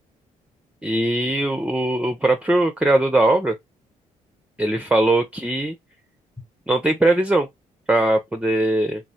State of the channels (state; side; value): normal; both; correlation 0.84